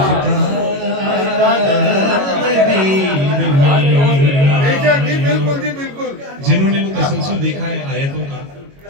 बिल्कुल जी बिल्कुल। जिन्होंने वो तसलसल देखा है आयतों का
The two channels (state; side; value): late; left; 22 ms